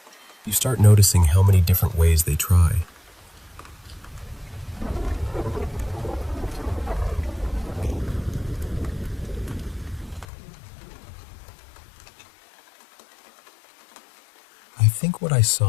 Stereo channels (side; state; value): right; drops out; at 10.2 s